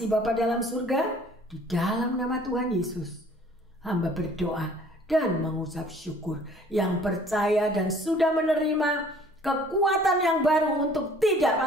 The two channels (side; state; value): both; normal; correlation 0.54